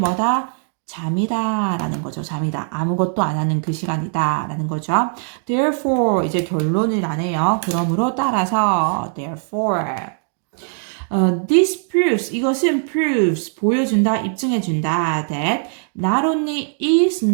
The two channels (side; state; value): left; silent; 66 dB below the other